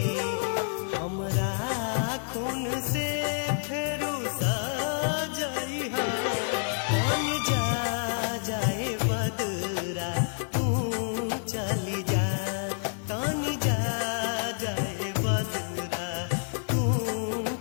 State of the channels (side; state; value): right; silent; 58 dB below the other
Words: हमरा खून से फेरू सजाई हा, पानी जा जाए बदरा तू चली जा, तानी जा जाए बदरा तू